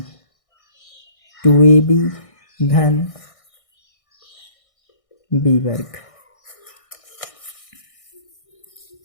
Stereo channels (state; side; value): late; right; 1.6 ms